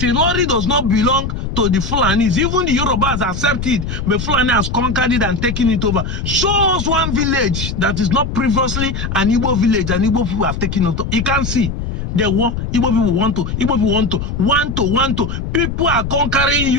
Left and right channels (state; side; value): noise; left; rumble, 4 dB below the sound